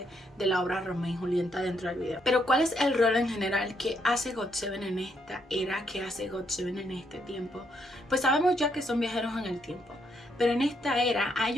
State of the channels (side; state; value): both; normal; correlation 0.75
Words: de la obra Romeo y Julieta dentro del video. Pero ¿cuál es el rol en general que hace GOT7 en esta era? ¿Qué hace GOT7 en este tiempo? Pues sabemos ya que son viajeros en el tiempo, pero en esta era a